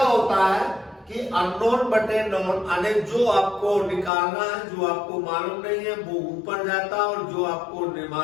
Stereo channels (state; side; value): drops out; right; at 4.1 s